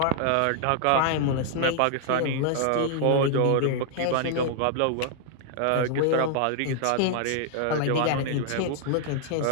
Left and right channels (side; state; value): both; different; correlation 0.00